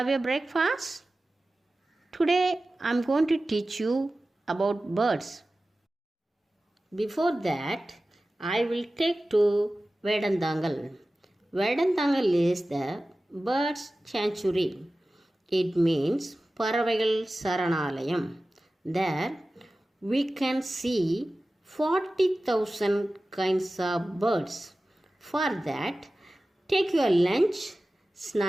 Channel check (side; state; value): both; normal; correlation 0.96